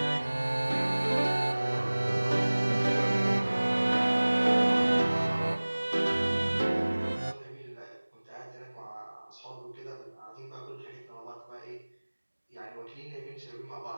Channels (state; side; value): inverted; both; correlation -1.00